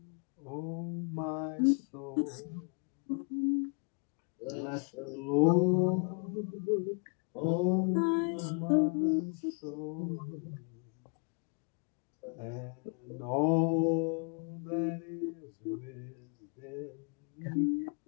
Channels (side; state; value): right; quieter; 38.0 dB